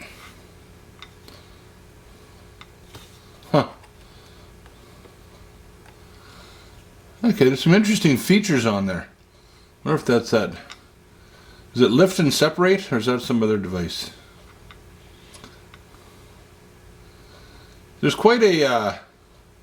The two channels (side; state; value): both; identical; correlation 1.00